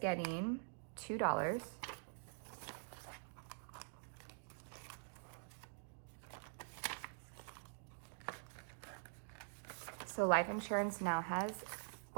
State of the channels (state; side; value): silent; left; digital silence